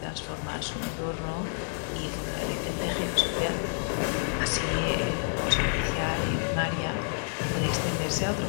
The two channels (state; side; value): silent; right; digital silence